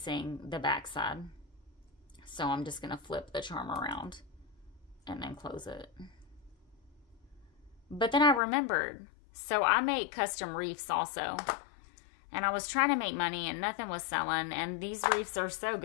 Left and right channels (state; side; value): drops out; right; at 8.4 s